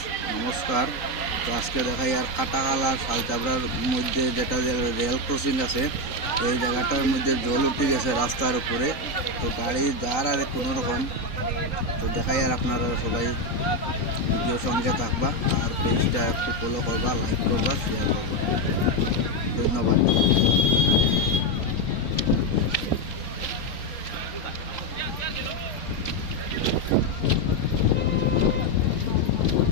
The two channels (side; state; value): right; late; 3.9 ms